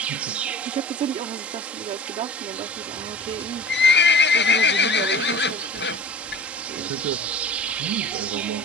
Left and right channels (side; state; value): both; normal; correlation 0.41